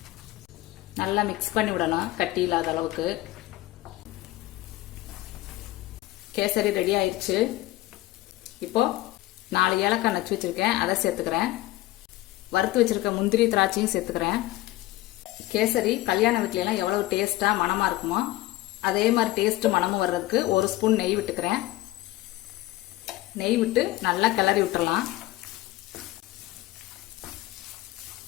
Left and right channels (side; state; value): right; quieter; 17.0 dB